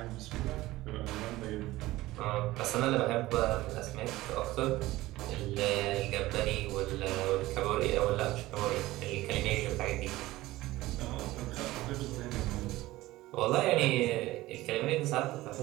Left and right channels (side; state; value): left; quieter; 17.7 dB